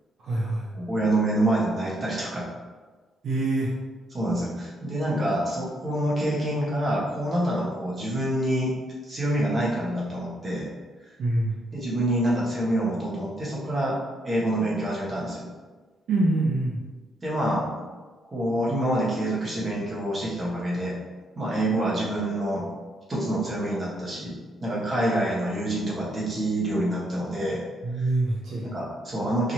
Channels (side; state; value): both; normal; correlation 0.74